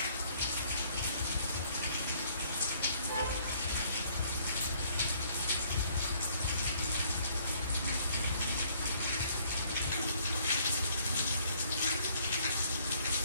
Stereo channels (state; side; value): inverted; both; correlation -0.63